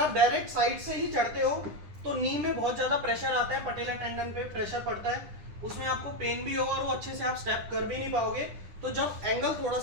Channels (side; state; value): left; late; 9.9 ms